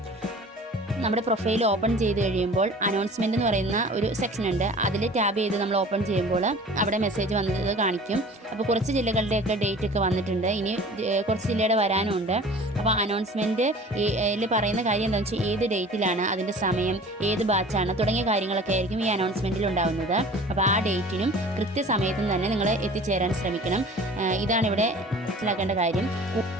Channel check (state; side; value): normal; both; correlation 0.44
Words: നമ്മുടെ പ്രൊഫൈൽ ഓപ്പൺ ചെയ്ത് കഴിയുമ്പോൾ അനൗൺസ്മെൻറ്റ് എന്ന് പറയുന്ന ഒരു സെക്ഷൻ ഉണ്ട്. അതിൽ ടാബ് ചെയ്ത് നമ്മൾ ഓപ്പൺ ചെയ്യുമ്പോൾ അവിടെ മെസ്സേജ് വന്നത് കാണിക്കും. അപ്പോൾ കുറച്ച് ജില്ലകളുടെയൊക്കെ ഡേറ്റ് ഒക്കെ വന്നിട്ടുണ്ട്, ഇനി കുറച്ച് ജില്ലയുടെ വരാനുണ്ട്. അപ്പോൾ അനൗൺസ്മെൻറ്റിൽ പറയുന്ന കാര്യം എന്താണെന്ന് വെച്ചാൽ ഏത് ഡേറ്റിലാണ്, അതിൻ്റെ സമയം, ഏത് ബാച്ചാണ് തുടങ്ങിയ കാര്യങ്ങളൊക്കെ ആയിരിക്കും ഈ അനൗൺസ്മെൻറ്റിൽ ഉണ്ടാകുന്നത്. അപ്പോൾ ആ ഡേറ്റിനും കൃത്യസമയത്തും തന്നെ നിങ്ങൾ എത്തിച്ചേരാൻ ശ്രമിക്കണം. ഇതാണ് ഇവിടെ മനസ്സിലാക്കേണ്ട കാര്യം.